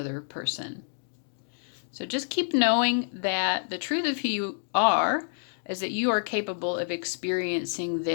person. So just keep knowing that the truth of who you are is that you are capable of experiencing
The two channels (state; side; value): silent; right; digital silence